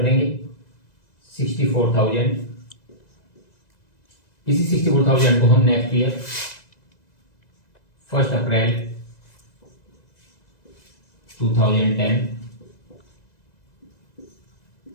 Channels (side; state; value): right; late; 2.0 ms